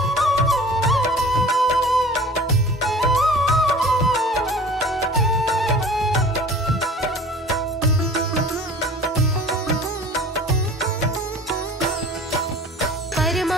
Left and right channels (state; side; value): normal; both; correlation 0.44